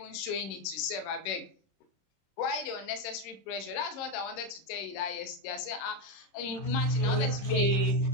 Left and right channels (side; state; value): right; late; 26 ms